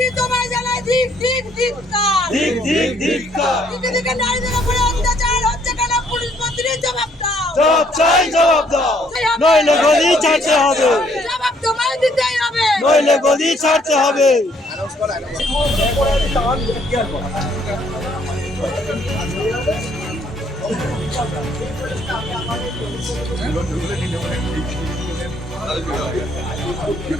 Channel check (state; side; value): normal; both; correlation 0.66